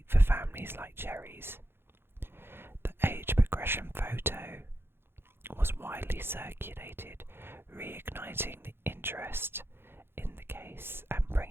for families like Cherrie's. The age progression photo was widely circulated, reigniting the interest in the case and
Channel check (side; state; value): left; late; 0.11 ms